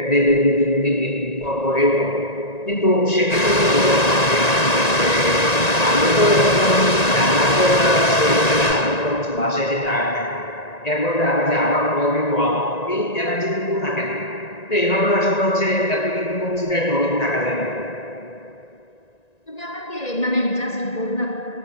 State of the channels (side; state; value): right; late; 1.9 ms